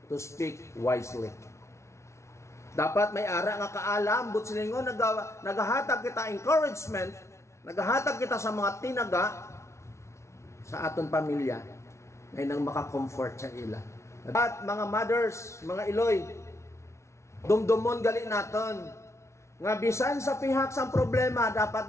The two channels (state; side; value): late; right; 0.13 ms